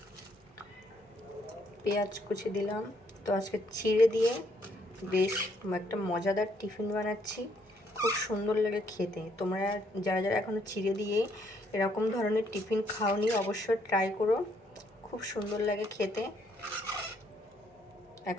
পেঁয়াজ কুচি দিলাম। তো আজকে চিড়ে দিয়ে বেশ একটা মজাদার টিফিন বানাচ্ছি, খুব সুন্দর লাগে খেতে। তোমরা যারা যারা এখনও চিড়ে দিয়ে এরকম ধরনের টিফিন খাওনি অবশ্যই ট্রাই করো, খুব সুন্দর লাগে খেতে।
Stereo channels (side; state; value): both; normal; correlation 0.70